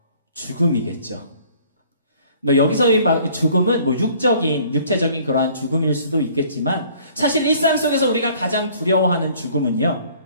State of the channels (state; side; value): inverted; both; correlation -0.56